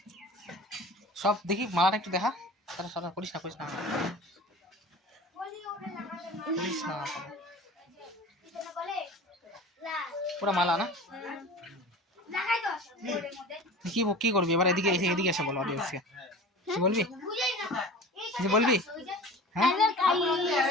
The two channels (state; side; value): normal; both; correlation 0.38